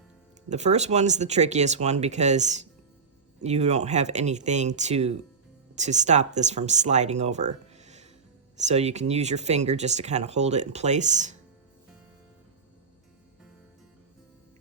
The first one's the trickiest one because you don't have anything to stop this from sliding over. So you can use your finger just to kind of hold it in place.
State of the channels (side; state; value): left; quieter; 5.2 dB